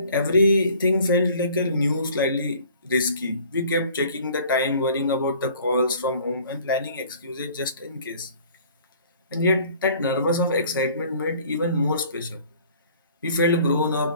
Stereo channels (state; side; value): inverted; both; correlation -0.52